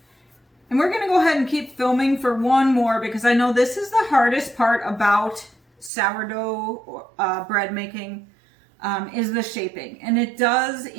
And we're going to go ahead and keep filming for one more because I know this is the hardest part about sourdough bread making is the shaping, and it does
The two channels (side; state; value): left; drops out; at 5.9 s